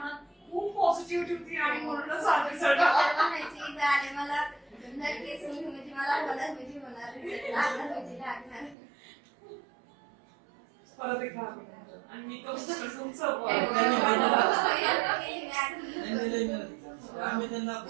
खूप पॉझिटिव्हिटी होती आणि म्हणूनच आले तर म्हणायचे इथं आले मला नक्कीच म्हणजे मला होणार म्हणजे होणार लागणार म्हणजे लागणार. परत एक अभिनंदन. आणि मी तो तुमचं आम्ही त्यांना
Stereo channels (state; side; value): drops out; left; at 8.8 s